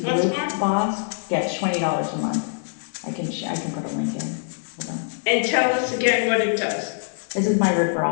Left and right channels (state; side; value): silent; right; 63 dB below the other